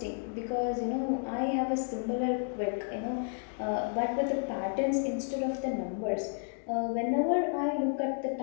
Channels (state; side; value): silent; right; 57 dB below the other